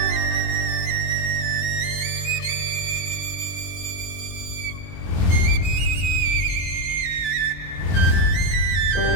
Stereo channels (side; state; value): right; late; 23 ms